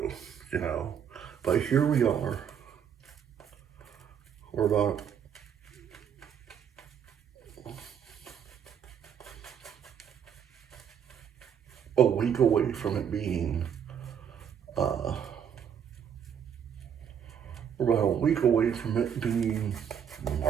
go, but here we are, we're about a week away from it being, we're about a week away from it being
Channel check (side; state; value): left; quieter; 8.2 dB